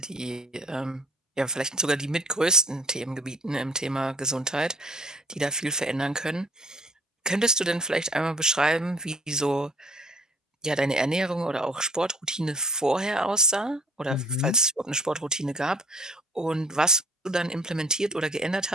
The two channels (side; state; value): both; normal; correlation 0.52